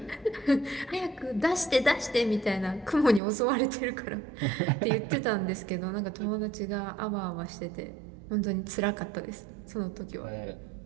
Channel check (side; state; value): left; drops out; at 3.2 s